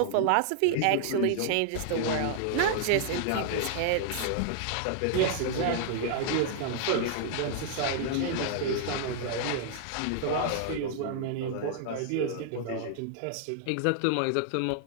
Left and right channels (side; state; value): both; different; correlation -0.01